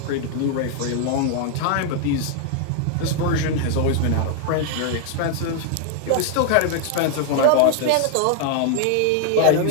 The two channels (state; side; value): different; both; correlation 0.00